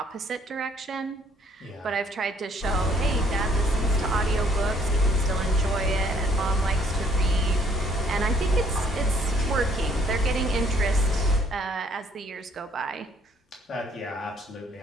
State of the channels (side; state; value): both; normal; correlation 0.63